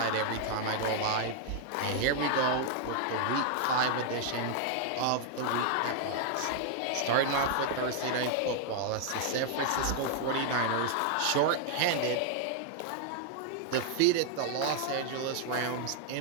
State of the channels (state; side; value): different; both; correlation 0.00